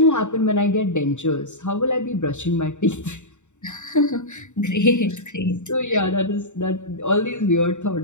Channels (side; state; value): right; late; 0.84 ms